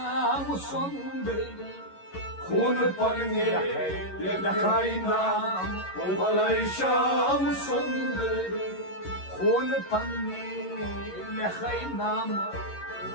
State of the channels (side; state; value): right; late; 11 ms